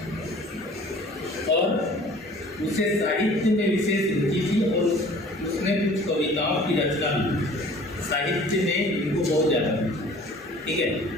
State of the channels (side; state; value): both; normal; correlation 0.48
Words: और उसे साहित्य में विशेष रुचि थी और उसने कुछ कविताओं की रचना भी, साहित्य में इनको बहुत ज़्यादा, ठीक है।